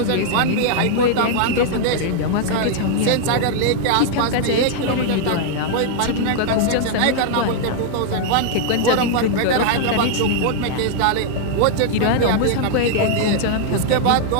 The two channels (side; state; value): both; different; correlation -0.01